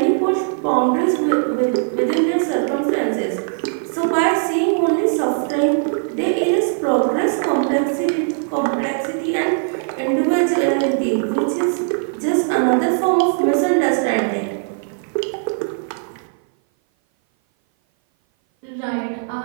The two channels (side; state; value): left; silent; 58 dB below the other